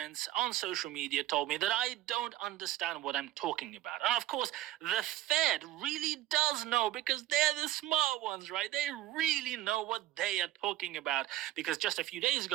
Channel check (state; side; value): quieter; left; 14.3 dB